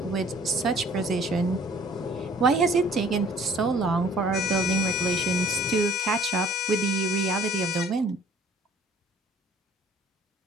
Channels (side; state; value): both; normal; correlation 0.54